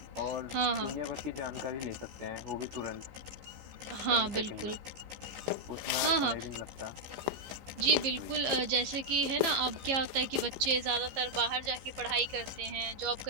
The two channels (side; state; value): left; late; 15 ms